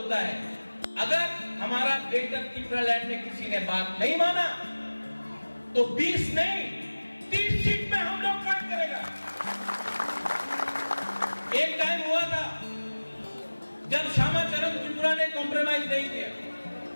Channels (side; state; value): both; inverted; correlation -1.00